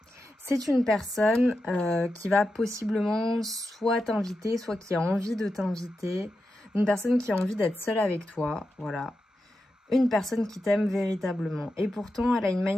C'est une personne qui va possiblement soit t'inviter, soit qui a envie de t'inviter. Une personne qui a envie d'être seule avec toi, voilà. Une personne qui t'aime véritablement. Et pourtant, elle a une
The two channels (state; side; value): normal; both; correlation 0.89